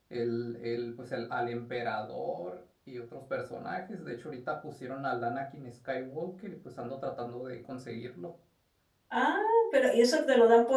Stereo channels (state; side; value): identical; both; correlation 1.00